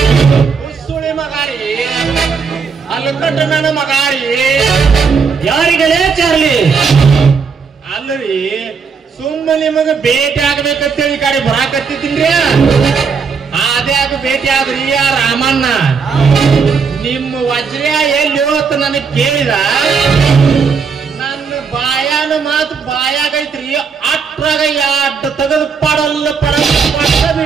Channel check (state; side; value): quieter; left; 5.6 dB